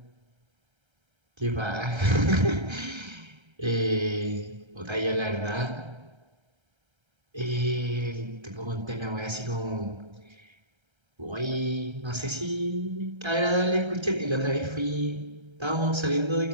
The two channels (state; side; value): late; left; 1.3 ms